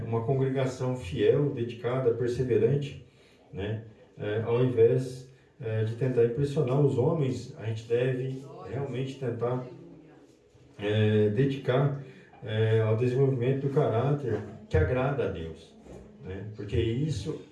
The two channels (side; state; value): both; identical; correlation 1.00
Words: Uma congregação fiel, dedicada, perseverante, né? Ao invés de tentar impressionar os homens, a gente deve realmente tentar dedicar ao desenvolvimento do caráter que agrada a Deus, né? Porque isso